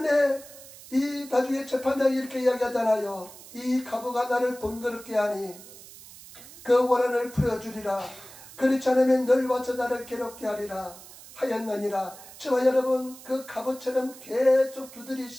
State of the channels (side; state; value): right; noise; hiss, 18 dB below the sound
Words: 이 나중에 재판장이 이렇게 이야기하잖아요. 이 가부가 나를 번거롭게 하니 그 원한을 풀어주리라. 그렇지 않으면 늘 와서 나를 괴롭게 하리라 하였느니라. 저와 여러분, 그 가부처럼 계속